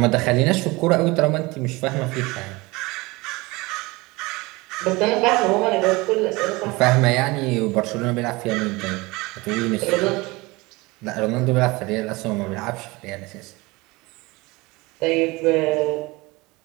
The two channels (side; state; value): left; quieter; 23.2 dB